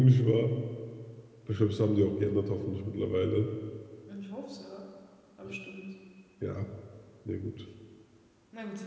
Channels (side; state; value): both; identical; correlation 1.00